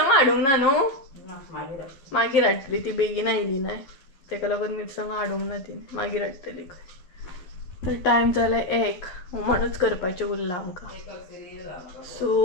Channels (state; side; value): late; right; 11 ms